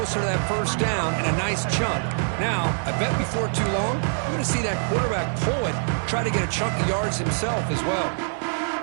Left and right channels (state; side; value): silent; left; 61 dB below the other